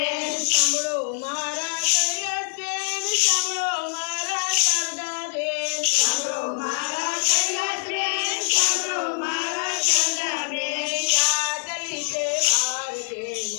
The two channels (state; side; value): silent; right; 62 dB below the other